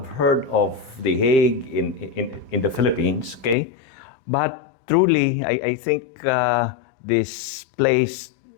heard of the Hague in the Philippines, okay? But truly, I think this place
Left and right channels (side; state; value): right; drops out; at 3.6 s